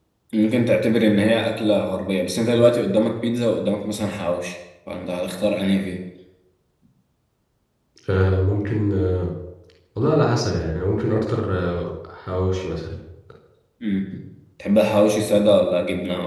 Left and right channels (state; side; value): identical; both; correlation 1.00